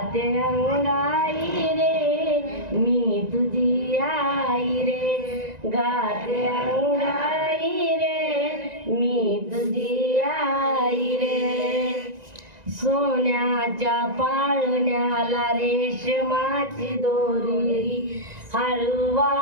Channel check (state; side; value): late; left; 1.9 ms